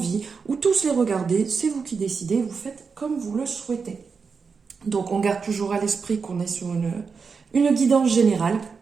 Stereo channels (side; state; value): left; quieter; 5.3 dB